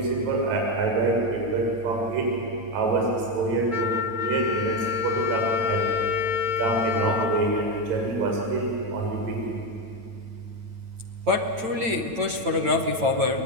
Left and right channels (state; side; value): late; left; 9.0 ms